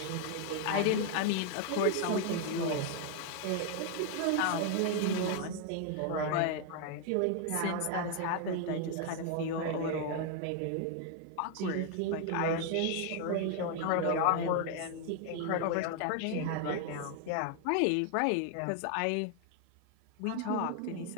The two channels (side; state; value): both; different; correlation 0.00